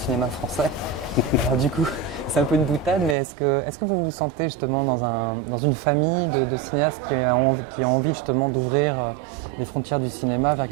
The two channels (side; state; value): left; drops out; at 3.2 s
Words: français. Alors du coup, c'est un peu une boutade, mais est-ce que vous vous sentez justement dans une famille de cinéastes qui a envie justement d'ouvrir les frontières du cinéma vers